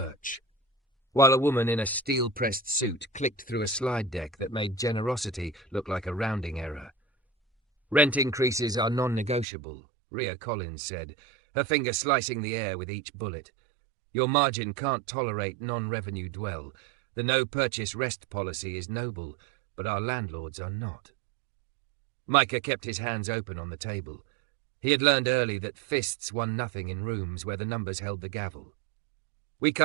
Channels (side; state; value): left; drops out; at 9.5 s